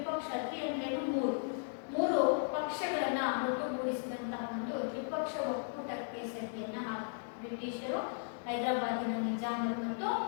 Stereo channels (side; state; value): right; silent; digital silence